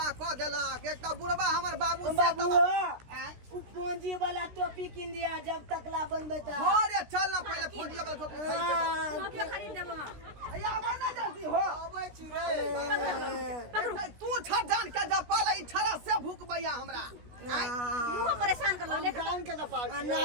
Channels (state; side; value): late; left; 16 ms